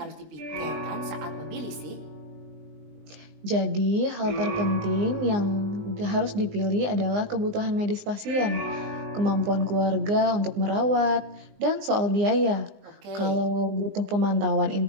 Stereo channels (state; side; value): late; left; 20 ms